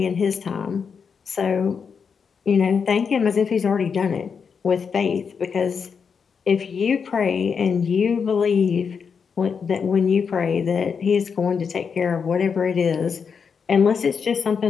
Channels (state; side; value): quieter; right; 6.2 dB